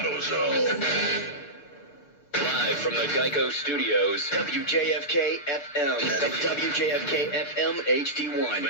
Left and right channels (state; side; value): late; right; 6.9 ms